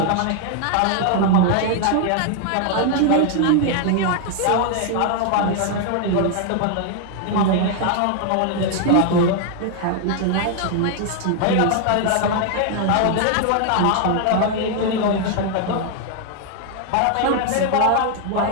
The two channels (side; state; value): both; different; correlation 0.00